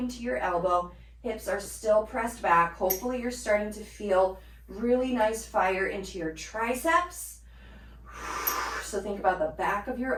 your elbow. Hips are still pressed back. Hopefully you're starting to feel really nice fire into your triceps. So think about the back of your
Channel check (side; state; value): both; identical; correlation 1.00